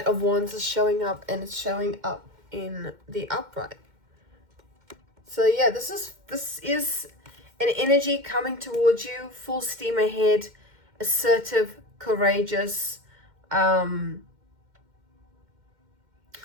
of Wands is showing up, and it's showing up in the upright. So yeah, this is an energy coming towards you, full steam ahead, assertive, courageous.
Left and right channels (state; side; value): late; left; 2.1 ms